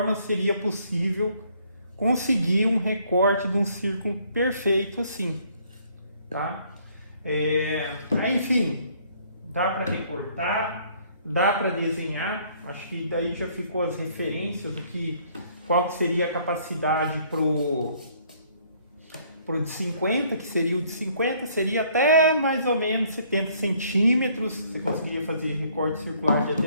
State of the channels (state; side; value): inverted; both; correlation -0.63